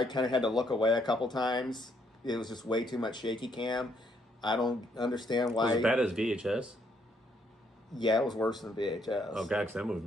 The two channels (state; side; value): normal; both; correlation 0.71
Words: kind of had to look away a couple times. It was just way too much shaky cam. I don't understand why. Was it as bad as VHS? Yeah, it was worse than VHS. Oh, God, because that movie